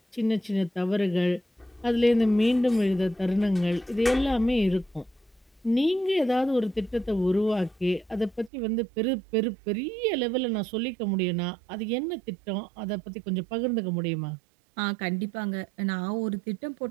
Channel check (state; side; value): drops out; left; at 8.5 s